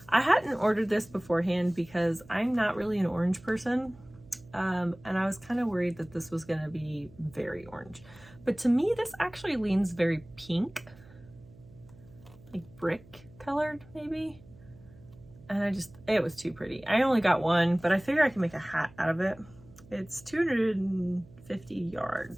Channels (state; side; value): noise; right; hum, 23 dB below the sound